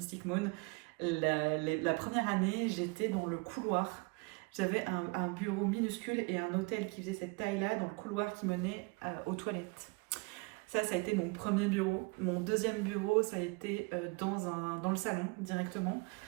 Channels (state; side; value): quieter; left; 29.4 dB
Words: Moon. La première année, j'étais dans le couloir. J'avais un bureau minuscule et un hôtel qui faisait cette taille-là dans le couloir qui menait aux toilettes. Ça a été mon premier bureau. Mon deuxième bureau, ça a été dans le salon directement.